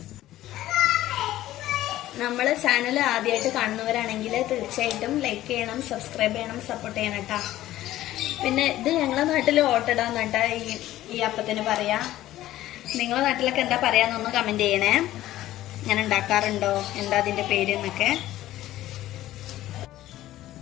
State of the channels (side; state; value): right; quieter; 14.6 dB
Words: നമ്മള് ചാനൽ ആദ്യമായിട്ട് കാണുന്നവരാണെങ്കിൽ തീർച്ചയായിട്ടും ലൈക്ക് ചെയ്യണം, സബ്സ്ക്രൈബ് ചെയ്യണം, സപ്പോർട്ട് ചെയ്യണം കേട്ടോ. പിന്നെ ഇത് ഞങ്ങളെ നാട്ടിൽ ഓട്ടടാന്ന് കേട്ടോ ഈ അപ്പത്തിന് പറയാ. നിങ്ങളെ നാട്ടിലൊക്കെ എന്താ പറയാന്നൊന്ന് കമന്റ് ചെയ്യണേ. ഞാൻ ഉണ്ടാക്കാറുണ്ടോ, എന്താ അതിന്റെ പേര് എന്നൊക്കെ.